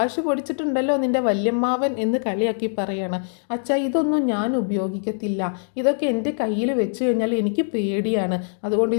പൊടിച്ചിട്ടുണ്ടല്ലോ നിൻ്റെ വല്യമ്മാവൻ എന്ന് കളിയാക്കി പറയാണ്. അച്ഛാ ഇതൊന്നും ഞാൻ ഉപയോഗിക്കത്തില്ല, ഇതൊക്കെ എൻ്റെ കയ്യിൽ വെച്ച് കഴിഞ്ഞാൽ എനിക്ക് പേടിയാണ്, അതുകൊണ്ട്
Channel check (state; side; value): silent; right; digital silence